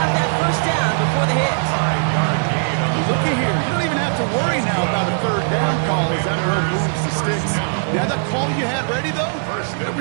that 1st down before the hit. 5-yard gain on the Look at here. You don't even have to worry now about a 3rd down call as that row moves the sticks. Now that call you had ready, though,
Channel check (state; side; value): silent; left; digital silence